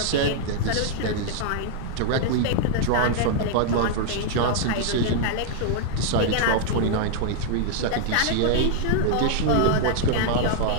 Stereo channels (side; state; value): both; different; correlation -0.01